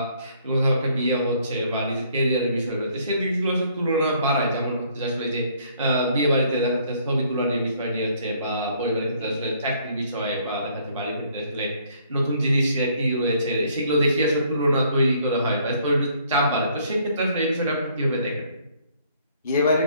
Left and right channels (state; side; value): inverted; both; correlation -0.63